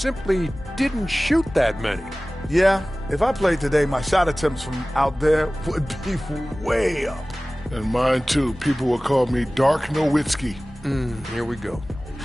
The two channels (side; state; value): both; normal; correlation 0.98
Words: didn't shoot that many. Yeah, if I played today, my shot attempts from out there would be way up. And mine, too. People would call me Dark Nowitzki. Here we go.